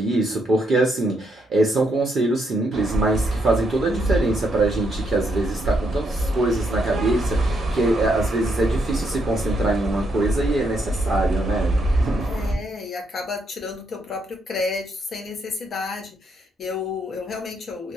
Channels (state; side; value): normal; both; correlation 0.77